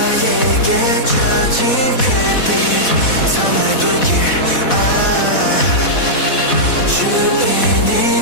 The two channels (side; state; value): right; late; 4.1 ms